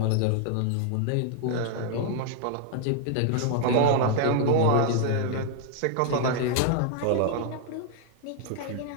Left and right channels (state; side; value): different; both; correlation 0.00